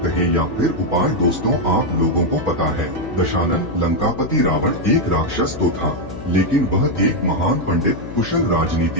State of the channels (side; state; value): left; noise; hum, 12 dB below the sound